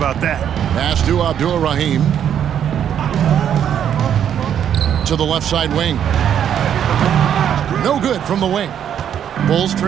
that. Pass to Abdur-Rahim. To the left side wing. No good from the wing. Bulls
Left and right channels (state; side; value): quieter; left; 9.3 dB